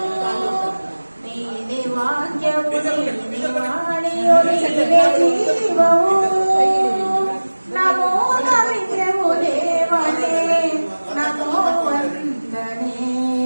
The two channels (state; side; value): inverted; both; correlation -1.00